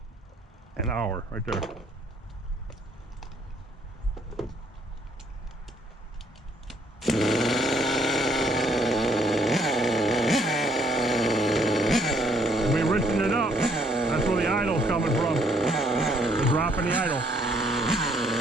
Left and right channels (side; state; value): both; normal; correlation 0.66